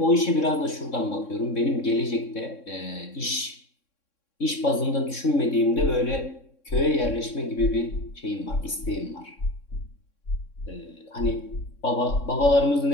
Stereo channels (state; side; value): late; right; 3.6 ms